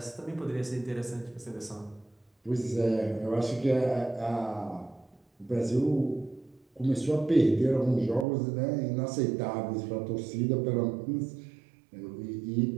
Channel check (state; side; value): drops out; left; at 8.2 s